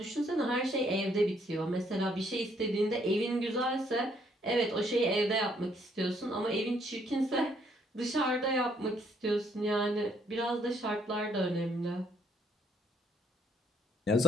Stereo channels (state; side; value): normal; both; correlation 0.69